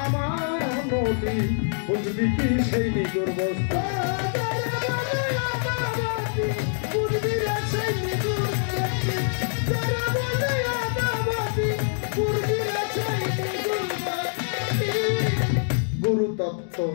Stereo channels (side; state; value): right; silent; digital silence